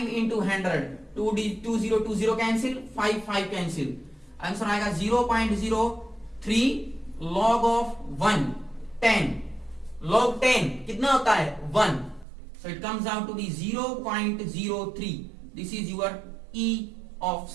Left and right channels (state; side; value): drops out; left; at 12.2 s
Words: into 100, 20 cancel, 5 cancel, answer आएगा 0.03 लॉग ऑफ 1, 10 लॉग 10 कितना होता है 1, so it comes out to be 0.03, this is your E of